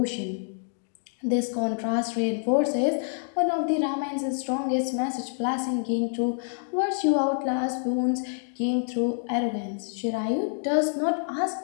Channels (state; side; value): silent; right; digital silence